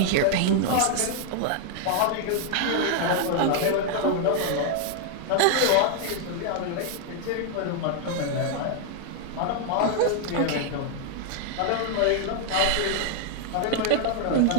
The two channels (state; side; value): different; both; correlation 0.00